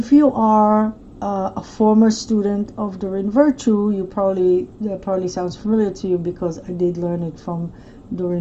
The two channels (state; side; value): identical; both; correlation 1.00